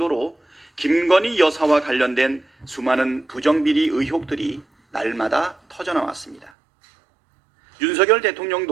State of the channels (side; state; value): left; drops out; at 6.5 s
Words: 김건희 여사와 관련된 수많은 부정비리 의혹들이 날마다 터져나왔습니다. 윤석열